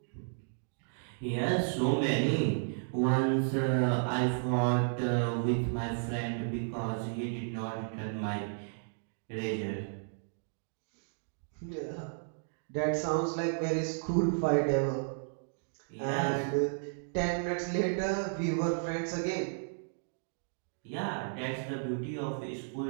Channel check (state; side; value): silent; left; digital silence